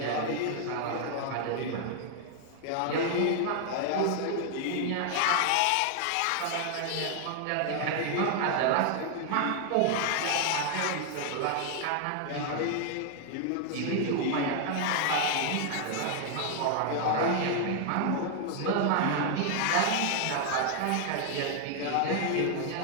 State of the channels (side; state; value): both; different; correlation 0.00